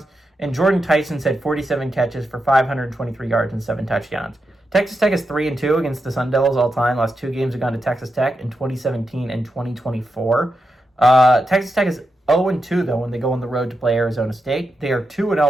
And Jordan Tyson's had 47 catches for 523 yards and 7 touchdowns. Texas Tech is 3-2 against the Sun Devils all time. Last 2 games have gone to Texas Tech in 2017 and 2024. Texas Tech is 0-2, though, when they go on the road to play Arizona State. They are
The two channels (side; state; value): both; normal; correlation 0.87